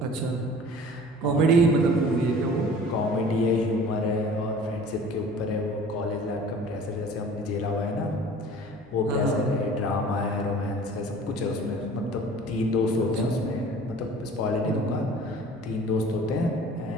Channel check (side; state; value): right; noise; hum, 28 dB below the sound